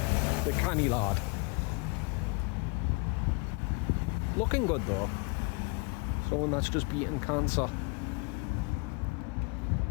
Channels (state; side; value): quieter; right; 29.7 dB